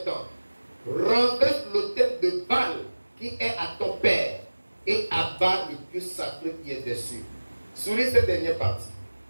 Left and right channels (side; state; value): both; inverted; correlation -1.00